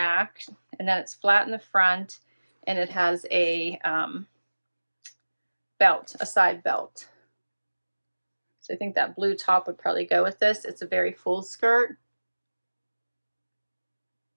and then it's flat in the front, and it has a belt, a side belt. So I think that blue top would probably go with this. It's a very full skirt.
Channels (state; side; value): inverted; both; correlation -1.00